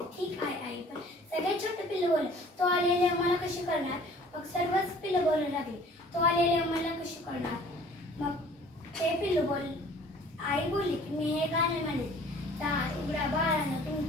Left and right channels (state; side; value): normal; both; correlation 0.51